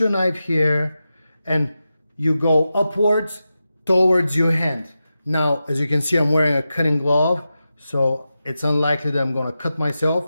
knife here and you go upwards towards your hand. Now, as you can see, I'm wearing a cutting glove, so it's unlikely that I'm gonna cut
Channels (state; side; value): inverted; both; correlation -0.91